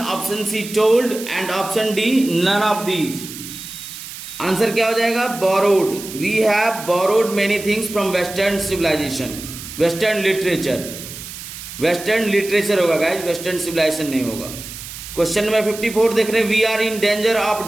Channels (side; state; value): right; noise; hiss, 12 dB below the sound